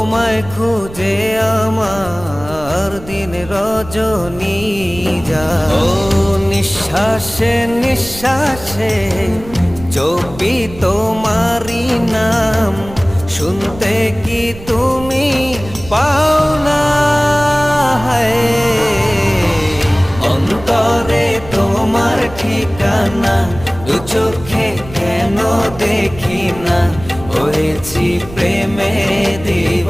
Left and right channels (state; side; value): noise; right; rumble, 15 dB below the sound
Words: খুঁজে আমার দিন রজনী যায়। ও নিঃশ্বাসে নিঃশ্বাসে জপি তোমারি নাম, শুনতে কি তুমি পাও না? অন্তরে তোমার ঠিকানা, দু চোখে কেন দেখি না? হয়েছি প্রেমে